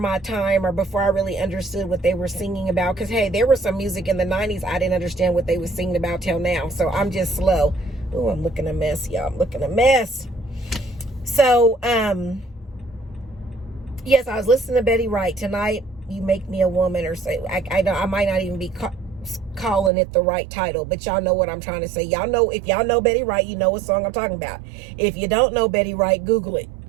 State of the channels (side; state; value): left; drops out; at 19.9 s